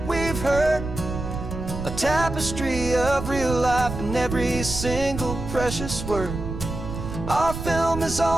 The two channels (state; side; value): noise; right; rumble, 7 dB below the sound